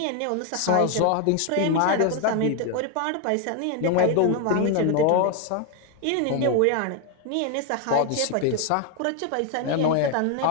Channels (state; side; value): different; both; correlation 0.01